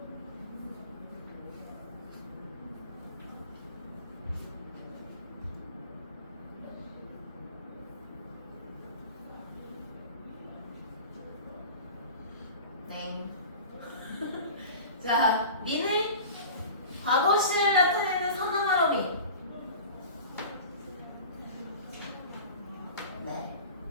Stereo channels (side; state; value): both; inverted; correlation -0.37